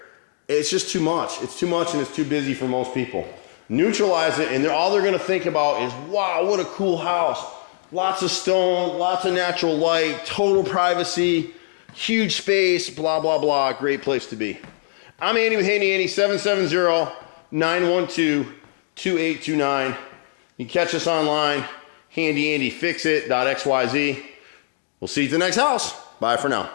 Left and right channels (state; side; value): silent; right; digital silence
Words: It's just too much. It's too much and it's too busy for most people. Neutralize it, and all they're gonna think about is, wow, what a cool house. Lots of stone, lots of natural light, total privacy, huge space, blah, blah, blah. Great place to be. I'm Andy with Handy Andy, 770-912-2829. You can catch us online, handyandyfixit.xyz. We'll see you at the next house. Bye for now.